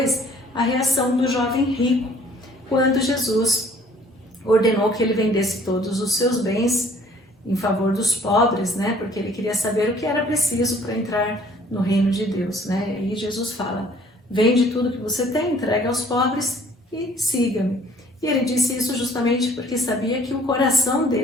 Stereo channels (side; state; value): both; normal; correlation 0.57